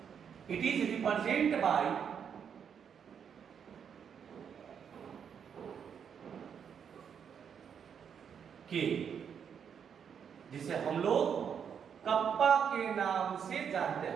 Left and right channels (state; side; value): quieter; left; 7.6 dB